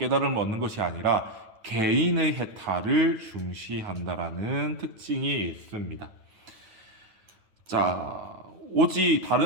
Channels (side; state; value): left; late; 9.2 ms